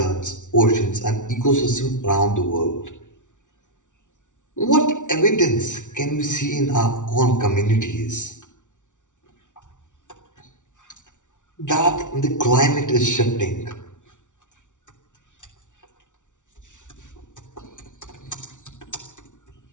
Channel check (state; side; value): late; right; 0.86 ms